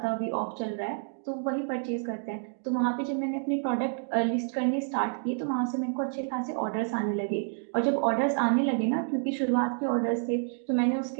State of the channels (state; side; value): silent; left; 59 dB below the other